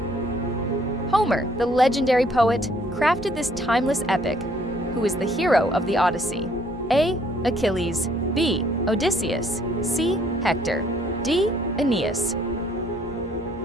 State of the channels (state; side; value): normal; both; correlation 0.63